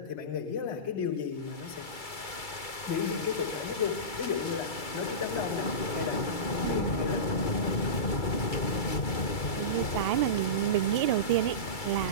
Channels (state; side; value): late; right; 2.3 ms